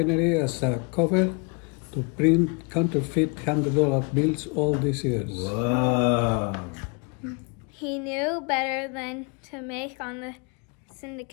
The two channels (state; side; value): quieter; right; 33.0 dB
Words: as a cover to print counterfeit $100 bills all these years. Wow. He knew better than to make on the